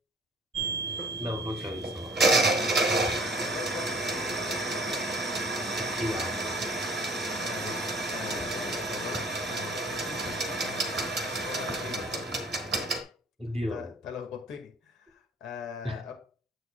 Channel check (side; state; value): both; normal; correlation 0.53